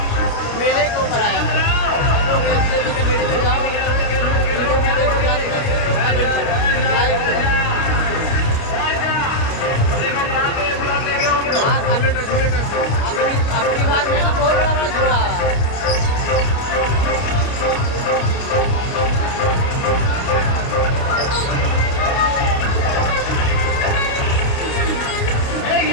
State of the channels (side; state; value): right; late; 29 ms